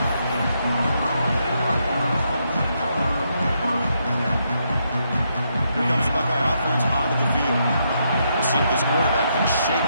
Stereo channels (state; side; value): inverted; both; correlation -0.78